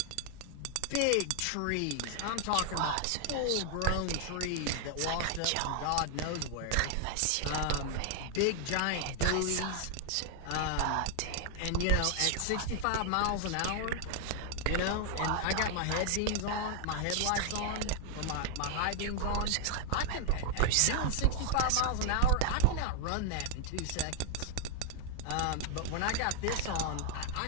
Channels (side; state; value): both; different; correlation 0.00